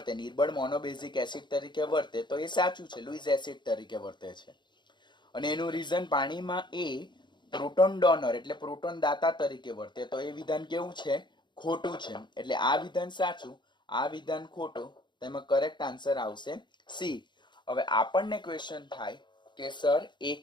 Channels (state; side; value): late; right; 0.22 ms